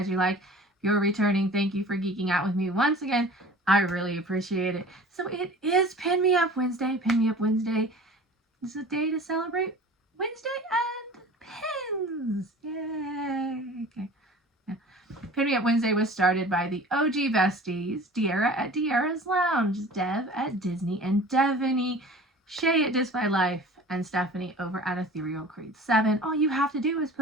you like. If you're returning, thank you for geeking out with me once again. I really appreciate it. So it is Pin Me Up Wednesday. Pin Me Up Wednesday is a day to celebrate Wednesday and pins. Yay! Okay. Yeah. Pin Me Up Wednesday was started by the OG besties, De'Ara at De'Ara's Lounge, Dev at Disney and Devaney, Shay at Dis by Life, and Stephanie over at Ethereal Creed 7. All you have to do is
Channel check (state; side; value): normal; both; correlation 0.42